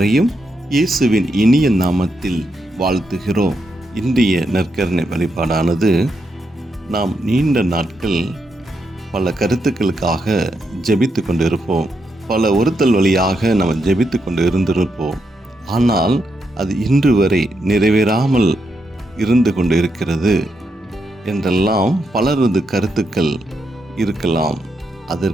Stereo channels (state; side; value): normal; both; correlation 0.82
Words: இயேசுவின் இனிய நாமத்தில் வாழ்த்துகிறோம். இன்றைய நற்கருணை வழிபாடானது நாம் நீண்ட நாட்கள் பல கருத்துக்களுக்காக ஜெபித்து கொண்டிருப்போம். பல ஒருத்தல் வழியாக நாம் ஜெபித்து கொண்டு இருந்திருப்போம். ஆனால் அது இன்று வரை நிறைவேறாமல் இருந்து கொண்டு இருக்கிறது என்றெல்லாம் பலரது கருத்துக்கள் இருக்கலாம்.